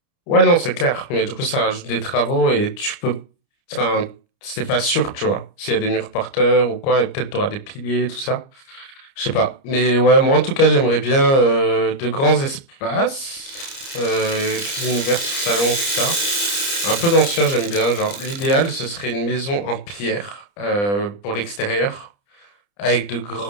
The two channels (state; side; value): late; right; 30 ms